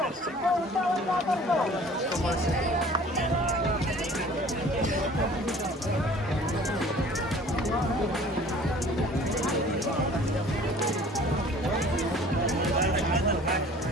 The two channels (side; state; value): both; normal; correlation 0.49